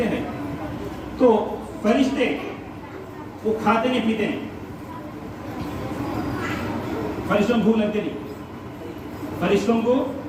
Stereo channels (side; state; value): both; identical; correlation 1.00